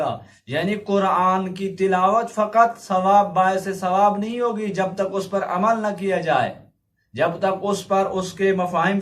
یعنی قرآن کی تلاوت فقط ثواب باعث ثواب نہیں ہوگی جب تک اس پر عمل نہ کیا جائے، جب تک اس پر اس کے مفاہیم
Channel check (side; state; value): both; identical; correlation 1.00